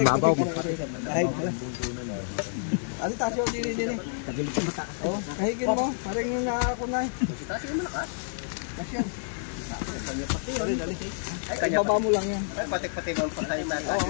babaw. Ano tasyo din. Oh, kahigin mo. Parang yung nakakunay. Tasyo malakas. Tasyo. Ay, baba mo lang yan. Ay, patik-patik ang patay na.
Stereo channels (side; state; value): right; silent; digital silence